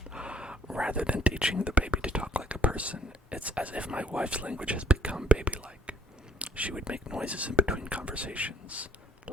Rather than teaching the baby to talk like a person, it's as if my wife's language has become baby-like. She would make noises in between conversations,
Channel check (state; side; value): normal; both; correlation 0.59